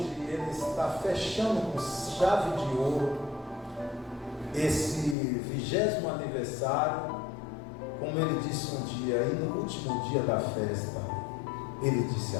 Ele está fechando com chave de ouro esse 20º aniversário, como Ele disse um dia, e no último dia da festa, Ele disse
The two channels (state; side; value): drops out; right; at 5.2 s